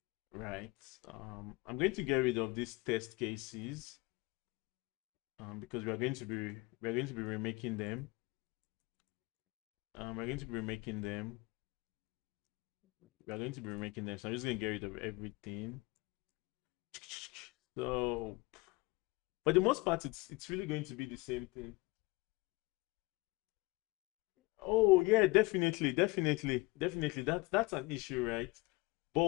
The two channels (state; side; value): quieter; right; 23.4 dB